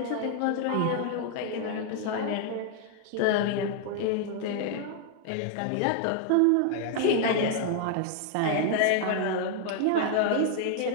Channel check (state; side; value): different; both; correlation 0.00